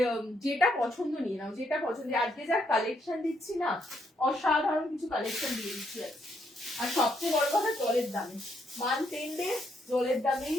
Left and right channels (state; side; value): normal; both; correlation 0.75